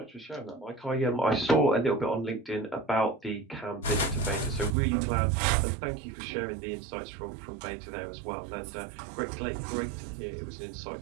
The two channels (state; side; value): drops out; left; at 4.7 s